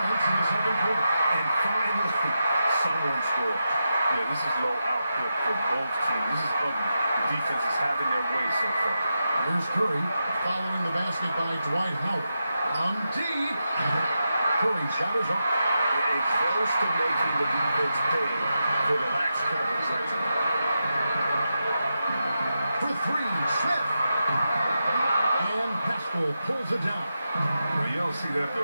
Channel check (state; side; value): inverted; both; correlation -0.88